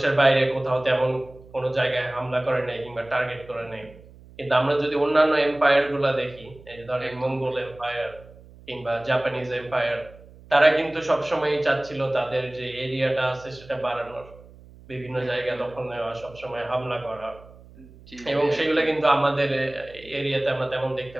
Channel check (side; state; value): right; noise; hum, 22 dB below the sound